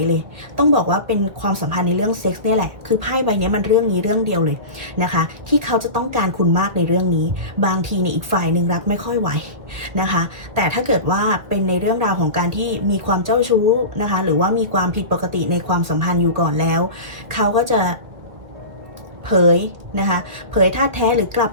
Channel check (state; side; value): late; left; 2.0 ms